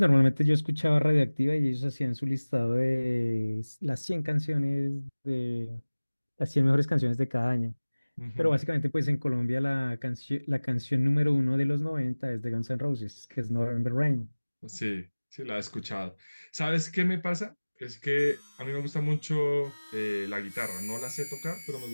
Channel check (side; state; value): both; inverted; correlation -1.00